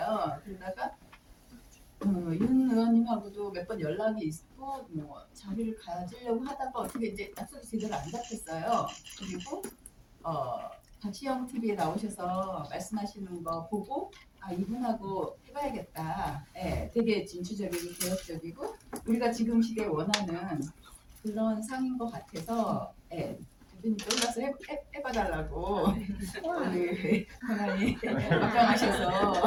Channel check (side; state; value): both; identical; correlation 1.00